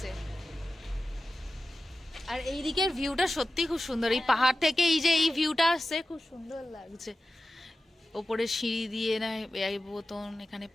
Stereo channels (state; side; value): normal; both; correlation 0.94